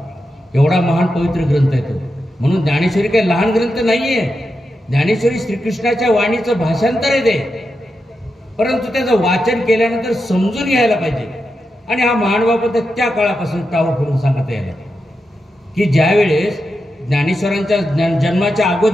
एवढा महान पवित्र ग्रंथ आहे तो. म्हणून ज्ञानेश्वरी काही लहान ग्रंथ नाहीये. ज्ञानेश्वरी श्रीकृष्णाच्या वाणीचं भाषांतर आहे ते, परंतु त्याचं वाचन केल्यानंतर समजून घ्यायला पाहिजे. आणि हा महानुभाव त्या काळापासून टाळू करून सांगत यायला की ज्यावेळेस ज्ञानेश्वरांच्या जन्माच्या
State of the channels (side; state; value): both; normal; correlation 0.88